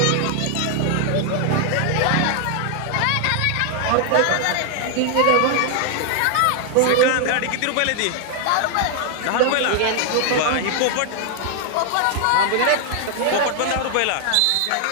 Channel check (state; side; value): different; both; correlation 0.00